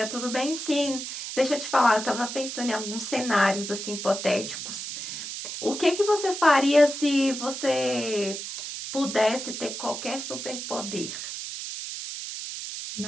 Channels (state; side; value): noise; right; hiss, 7 dB below the sound